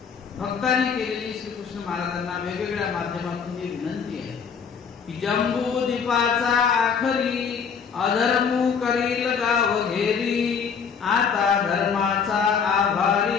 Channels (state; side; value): quieter; right; 6.4 dB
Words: भक्तांनी केलेली श्रीकृष्ण महाराजांना वेगवेगळ्या माध्यमातून ही विनंती आहे की जंबू दीपाचा आखरी अधर्मू करील गाव घेरी, आता धर्माचा